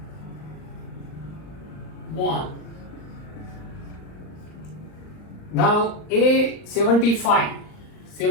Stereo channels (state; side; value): late; right; 39 ms